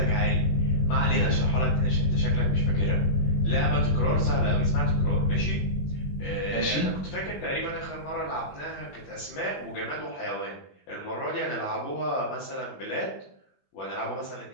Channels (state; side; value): late; right; 21 ms